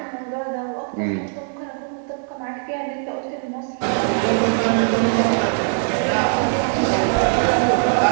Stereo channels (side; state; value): left; silent; 65 dB below the other